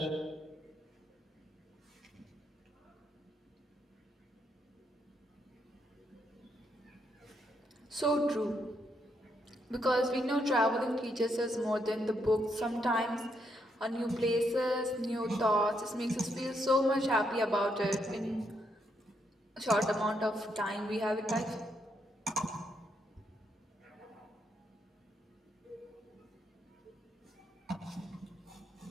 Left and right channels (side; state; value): both; normal; correlation 0.77